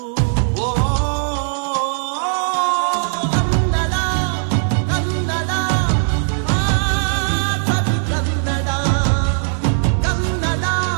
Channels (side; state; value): left; silent; digital silence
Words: ಕನ್ನಡ ಕನ್ನಡ ಸವಿ ಕನ್ನಡ, ಕನ್ನಡ